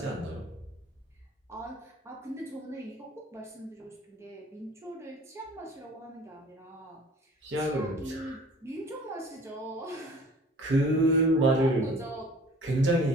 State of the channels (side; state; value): both; normal; correlation 0.48